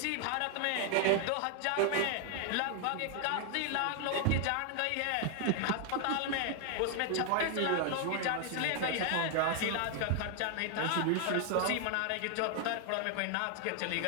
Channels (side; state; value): both; different; correlation 0.00